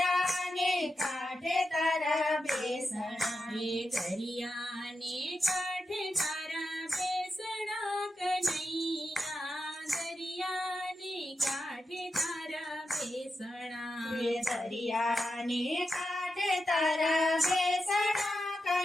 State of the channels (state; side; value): normal; both; correlation 0.89